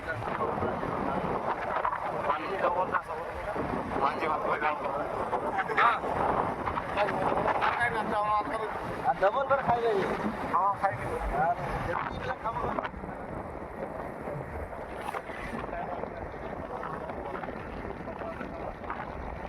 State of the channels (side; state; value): both; identical; correlation 1.00